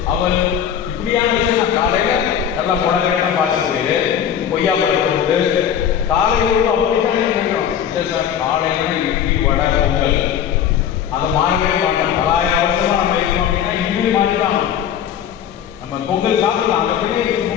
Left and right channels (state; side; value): quieter; right; 9.2 dB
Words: அவல் இப்படியான விஷயம் நான் காலையில் நல்லா முடகெல்லாம் பார்த்துட்டு கொய்யா பழம் போட்டு காலையில் அப்படித்தானே நினைக்கிறோம். இல்லை சார், காலையில் இட்லி வடை பொங்கல் அதை மாறவே மாட்டோம். 1000 வருஷமாக நம்ம இருக்கோம் அப்படின்னா இனிமேல் மாறிதான். நம்ம பொங்கல் சாப்பிடலாம், அந்த பிள்ளைய